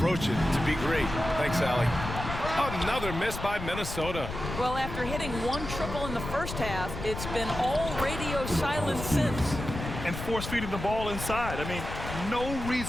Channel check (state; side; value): noise; left; rumble, 7 dB below the sound